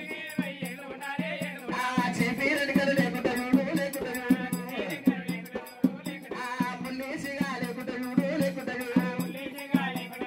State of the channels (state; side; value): identical; both; correlation 1.00